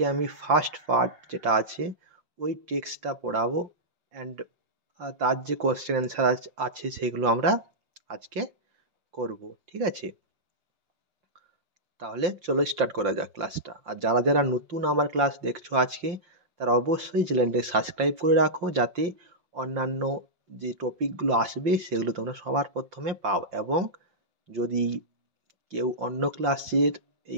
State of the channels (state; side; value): late; left; 5.7 ms